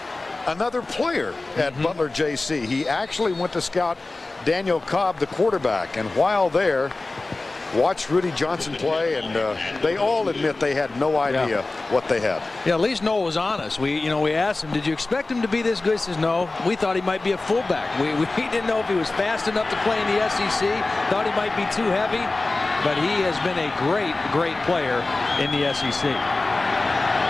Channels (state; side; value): quieter; right; 3.2 dB